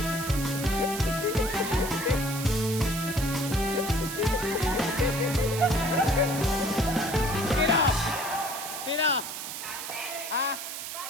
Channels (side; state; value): right; noise; hiss, 7 dB below the sound